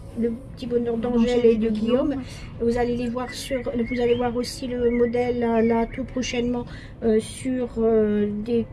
bonheur d'Angèle et de Guillaume. Vous allez les voir vous allez voir aussi le modèle là tout prochainement sur des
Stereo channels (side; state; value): both; identical; correlation 1.00